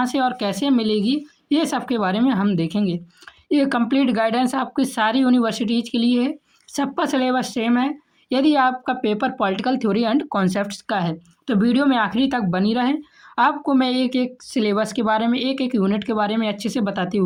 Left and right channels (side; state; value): both; identical; correlation 1.00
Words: से और कैसे मिलेगी, ये सब के बारे में हम देखेंगे। ये कंप्लीट गाइडेंस आपकी सारी यूनिवर्सिटीज़ के लिए है, सबका सिलेबस सेम है। यदि आपका paper political theory and concepts का है तो वीडियो में आखिरी तक बनी रहें। आपको मैं एक एक सिलेबस के बारे में, एक एक यूनिट के बारे में अच्छे से बताते